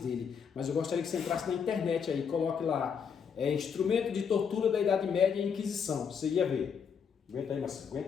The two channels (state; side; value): quieter; right; 6.8 dB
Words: mas eu gostaria que você entrasse na internet aí, coloque lá, instrumento de tortura da Idade Média e Inquisição, você ia ver. Aguenta aí, Marcelo,